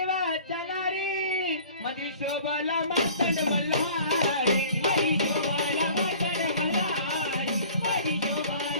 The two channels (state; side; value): inverted; both; correlation -0.46